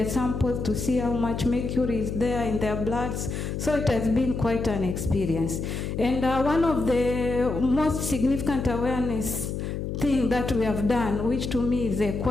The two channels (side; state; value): left; noise; hum, 4 dB below the sound